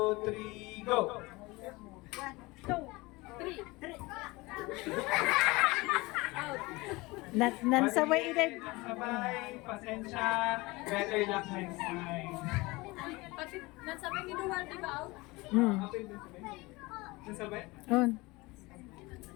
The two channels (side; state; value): right; quieter; 22.8 dB